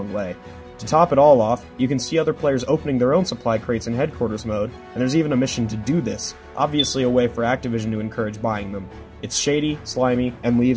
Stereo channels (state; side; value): identical; both; correlation 1.00